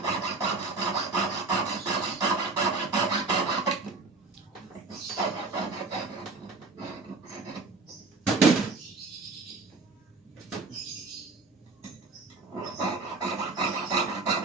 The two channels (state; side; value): quieter; left; 3.8 dB